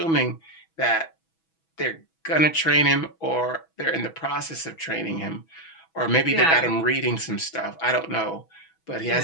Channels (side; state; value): right; late; 6.1 ms